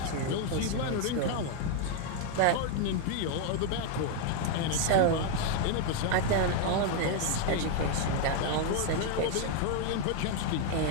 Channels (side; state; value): both; different; correlation 0.01